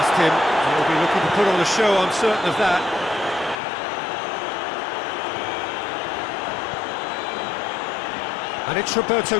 him. He'll be looking to put on a show, I'm certain of that. And it's Roberto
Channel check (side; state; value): right; drops out; at 3.6 s